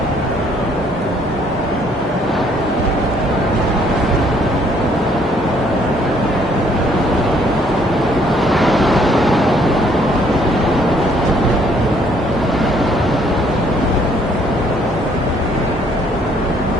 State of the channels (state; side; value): normal; both; correlation 0.64